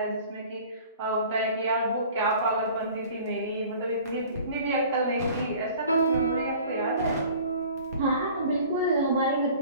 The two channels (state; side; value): inverted; both; correlation -0.47